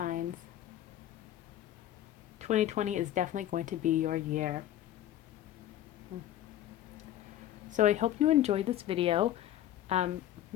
2020 is definitely going to be your year. So I hope you enjoyed this video.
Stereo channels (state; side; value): quieter; right; 12.5 dB